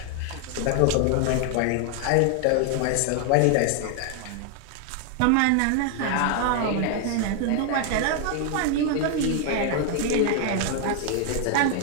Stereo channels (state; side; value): different; both; correlation 0.00